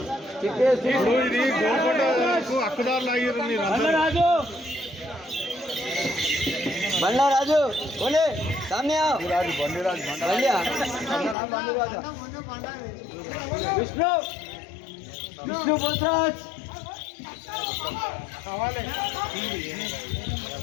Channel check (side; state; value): right; drops out; at 11.4 s